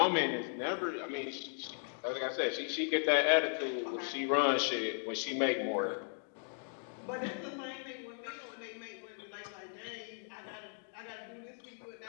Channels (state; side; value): silent; right; 53 dB below the other